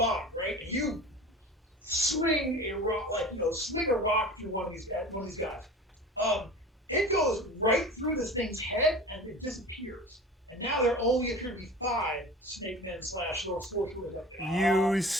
right? And you swing a rock, swing a rock through one of these guys. It goes right through this thing's head and it disappears. And now there only appear to be 5 snake men / sorcerers up there. You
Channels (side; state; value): both; normal; correlation 0.37